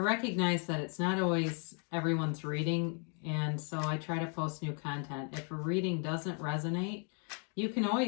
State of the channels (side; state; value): right; quieter; 39.6 dB